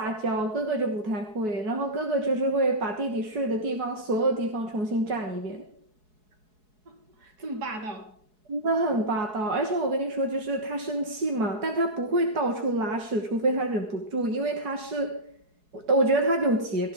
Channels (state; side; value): late; left; 4.7 ms